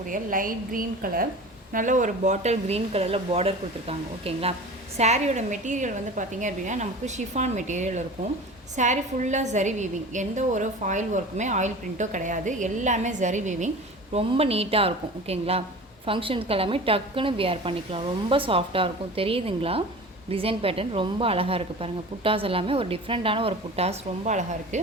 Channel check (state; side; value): normal; both; correlation 0.36